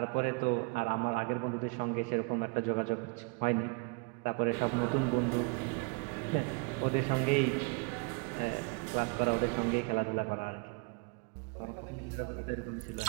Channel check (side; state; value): left; quieter; 30.7 dB